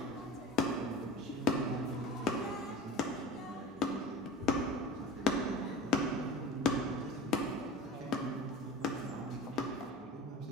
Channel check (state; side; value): normal; both; correlation 0.35